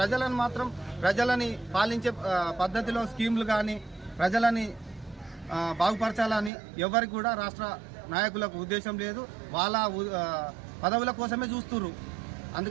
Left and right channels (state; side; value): drops out; left; at 6.5 s